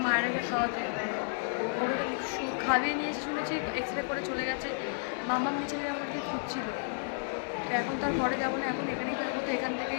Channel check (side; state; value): right; silent; digital silence